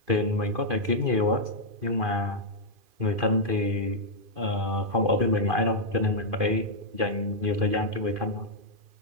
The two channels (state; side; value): late; left; 2.5 ms